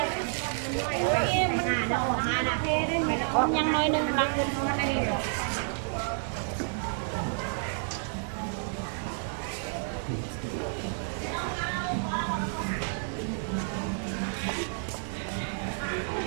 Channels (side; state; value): left; silent; 58 dB below the other